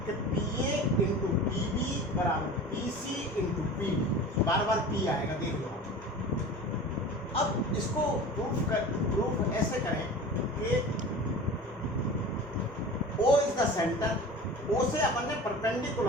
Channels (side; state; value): both; normal; correlation 0.37